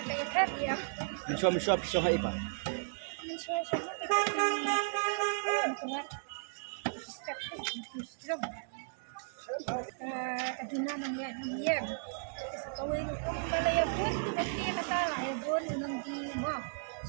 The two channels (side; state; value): left; silent; digital silence